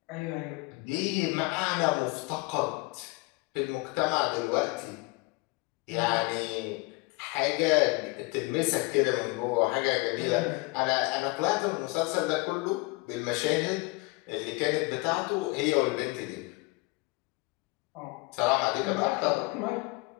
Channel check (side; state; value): right; quieter; 25.7 dB